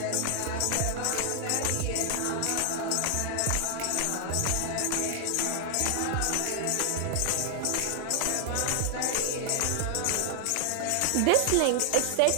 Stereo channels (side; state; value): both; different; correlation 0.00